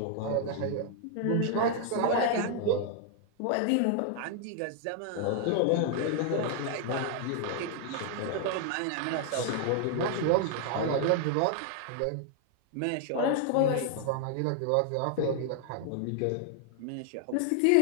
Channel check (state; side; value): different; both; correlation 0.00